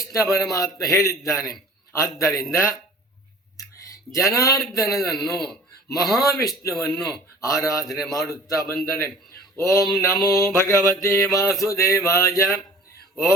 ಪರಮಾತ್ಮ ಹೇಳಿದ್ದಾನೆ. ಆದ್ದರಿಂದ ಜನಾರ್ದನನನ್ನು, ಮಹಾವಿಷ್ಣುವನ್ನು ಆರಾಧನೆ ಮಾಡುತ್ತಾ ಬಂದರೆ ಓಂ ನಮೋ ಭಗವತೆ ವಾಸುದೇವಾಯ,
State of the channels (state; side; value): normal; both; correlation 0.45